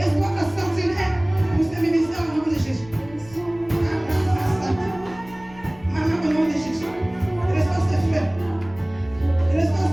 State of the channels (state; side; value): noise; left; rumble, 22 dB below the sound